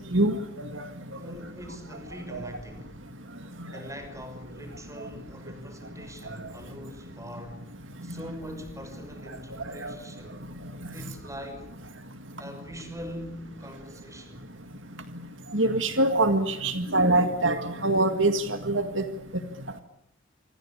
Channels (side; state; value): both; normal; correlation -0.07